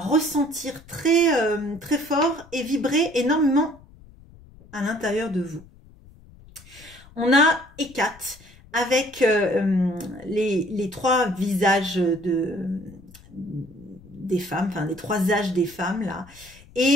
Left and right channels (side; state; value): left; noise; rumble, 23 dB below the sound